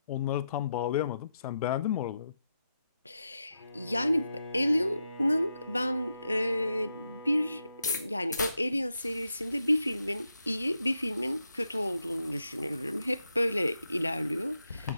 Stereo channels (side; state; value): both; inverted; correlation -0.85